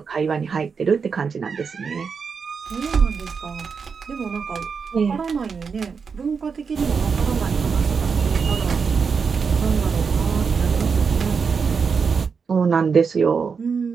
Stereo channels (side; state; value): left; quieter; 5.7 dB